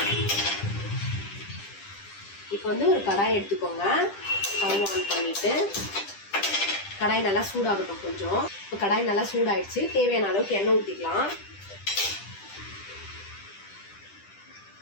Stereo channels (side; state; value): right; late; 10 ms